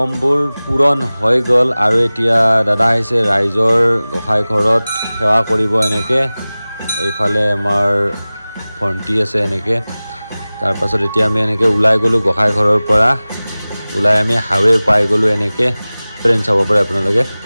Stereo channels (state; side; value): inverted; both; correlation -0.98